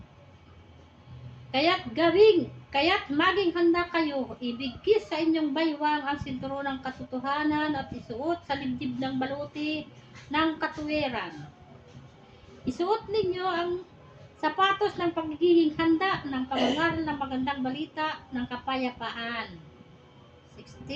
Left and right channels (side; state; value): both; identical; correlation 1.00